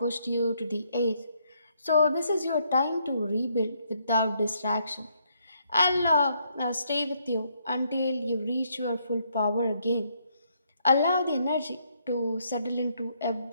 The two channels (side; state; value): both; inverted; correlation -0.72